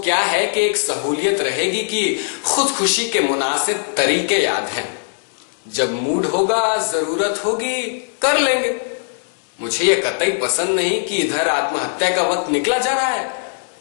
है कि एक सहूलियत रहेगी कि खुदकुशी के मुनासिब तरीके याद हैं। जब मूड होगा, जरूरत होगी, कर लेंगे। मुझे ये कतई पसंद नहीं कि इधर आत्महत्या का वक्त निकला जा रहा है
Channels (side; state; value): right; silent; 66 dB below the other